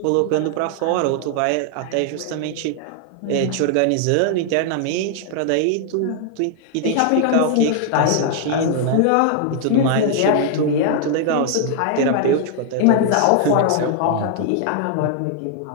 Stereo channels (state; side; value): different; both; correlation 0.00